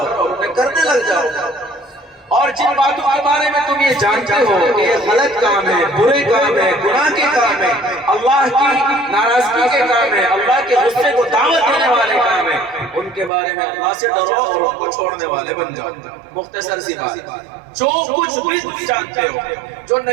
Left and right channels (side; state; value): left; drops out; at 13.3 s